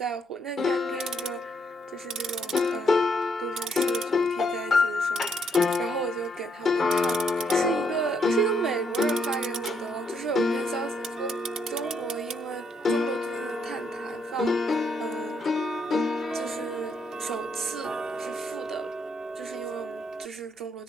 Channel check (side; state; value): both; normal; correlation 0.74